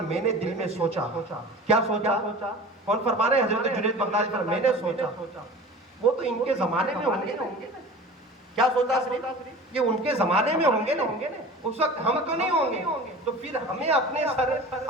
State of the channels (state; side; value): normal; both; correlation 0.38